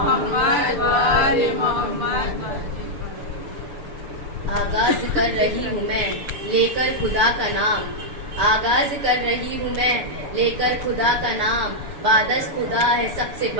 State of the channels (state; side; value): late; left; 6.8 ms